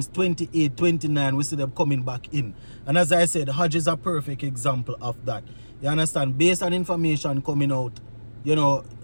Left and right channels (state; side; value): inverted; both; correlation -1.00